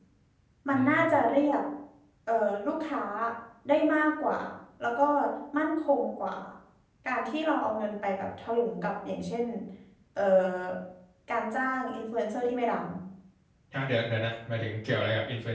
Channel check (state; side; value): identical; both; correlation 1.00